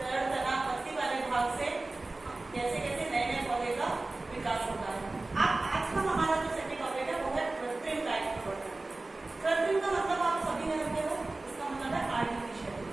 तना पत्ती वाले भाग से कैसे कैसे नए नए पौधे का विकास होता है। अब आज का हमारा जो सेकंड टॉपिक है वो है कृत्रिम कायिक प्रवर्धन। कृत्रिम का मतलब आप सभी ने रखे हो, इसका मतलब है आर्टिफिशियल,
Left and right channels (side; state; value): left; quieter; 3.1 dB